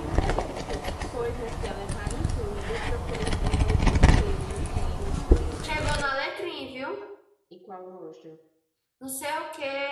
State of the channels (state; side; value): identical; both; correlation 1.00